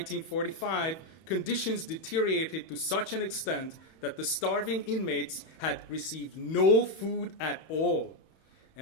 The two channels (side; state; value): right; late; 31 ms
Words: conditions deteriorated to such an extent that the starving inmates had received no food at all.